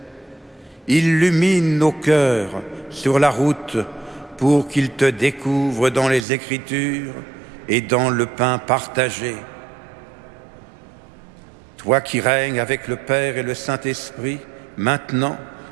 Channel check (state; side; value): drops out; left; at 6.2 s